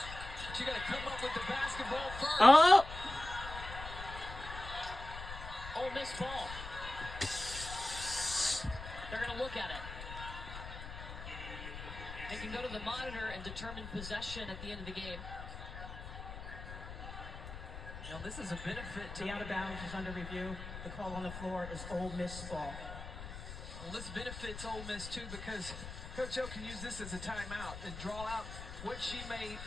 But you got to come up with the basketball first. Oh! Ole Miss ball. They're going to look at it. They can go to the monitor and determine possession at the end of the game. Now, this is a benefit to The out of bounds is under review. The call on the floor is Ole Miss ball. Well, this benefits Ole Miss, too, because Coach O can use this as a timeout and draw out what she may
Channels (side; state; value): left; noise; rumble, 10 dB below the sound